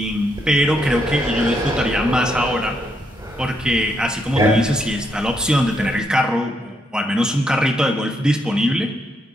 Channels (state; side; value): normal; both; correlation 0.77